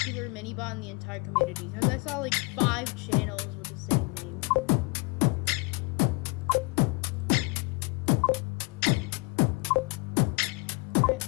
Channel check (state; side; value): quieter; right; 27.6 dB